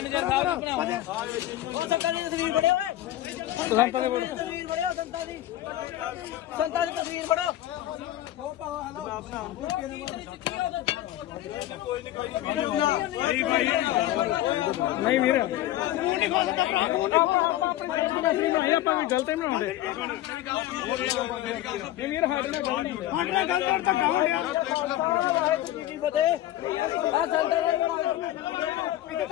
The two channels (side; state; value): right; quieter; 14.1 dB